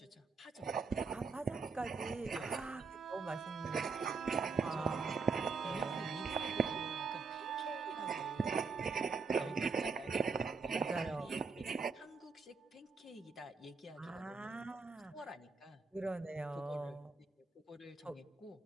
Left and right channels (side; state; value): left; quieter; 4.6 dB